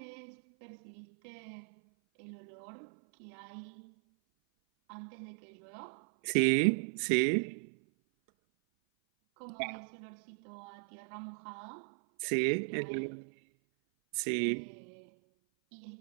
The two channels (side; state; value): left; silent; 53 dB below the other